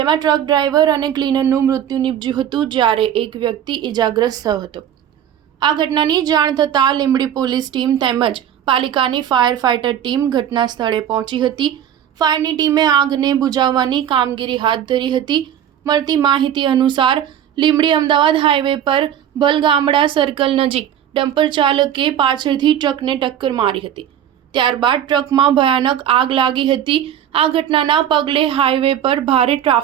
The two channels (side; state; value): left; quieter; 10.1 dB